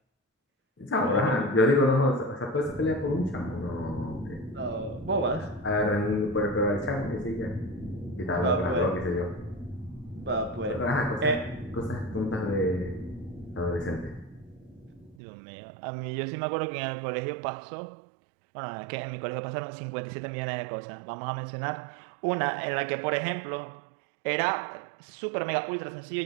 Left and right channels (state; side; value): drops out; left; at 15.2 s